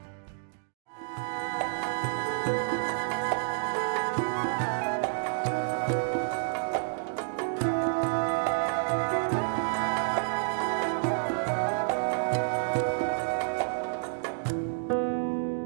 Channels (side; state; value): left; silent; digital silence